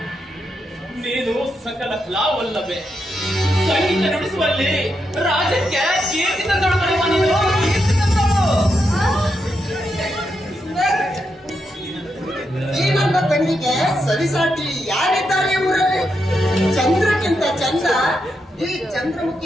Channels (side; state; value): both; normal; correlation 0.83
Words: ನೀನು ಸಕಲ ಕಲಾವಲ್ಲವೇ, ಸಂಗೀತ ನುಡಿಸುವಲ್ಲಿ ರಾಜ್ಯಕ್ಕೆ ಕೀರ್ತಿ ತಂದೊಳಗಡೆ ನೀನು. ಈ ನನ್ನ ತಂಗಿಗೆ ಸರಿಸಾಟಿ ಯಾರಿದ್ದಾರೆ ಊರಲ್ಲಿ? ಚಂದ್ರಕ್ಕಿಂತ ಚಂದ ಈ